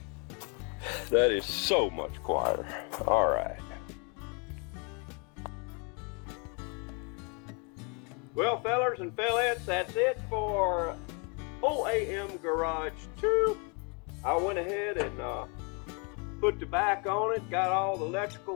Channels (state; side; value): quieter; right; 34.4 dB